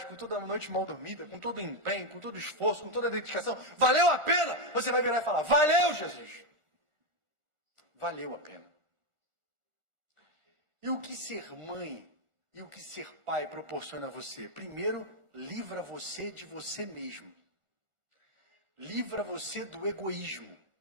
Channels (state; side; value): late; left; 1.4 ms